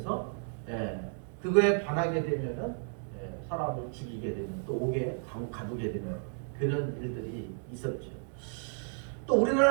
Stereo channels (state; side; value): silent; left; 56 dB below the other